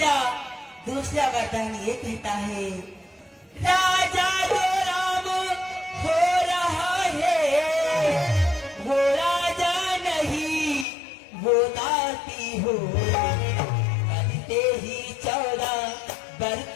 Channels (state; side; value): drops out; right; at 10.9 s